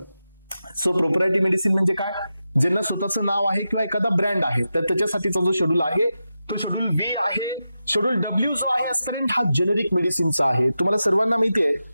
सो प्रोप्रायरिटी मेडिसिन म्हणजे काय, ज्यांना स्वतःचं नाव आहे किंवा एखादा ब्रँड आहे, तर त्याच्यासाठीचा जो शेड्यूल आहे तो शेड्यूल व्ही आहे. शेड्यूल डब्ल्यू जो आहे आजपर्यंत हा जेनेरिक मेडिसिनचा आहे. तुम्हाला सर्वांना माहिती आहे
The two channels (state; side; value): inverted; both; correlation -0.90